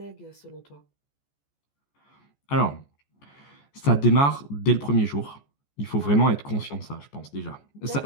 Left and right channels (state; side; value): late; right; 14 ms